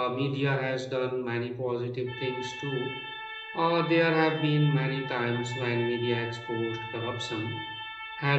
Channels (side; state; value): both; identical; correlation 1.00